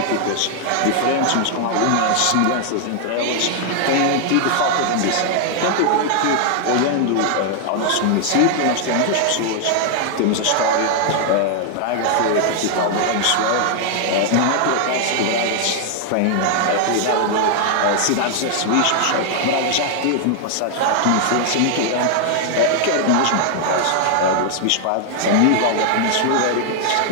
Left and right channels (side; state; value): both; different; correlation 0.00